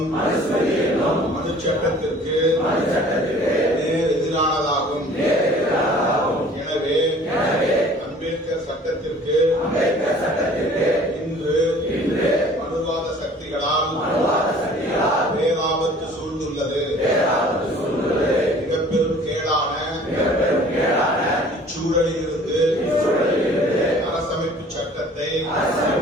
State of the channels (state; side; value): normal; both; correlation 0.50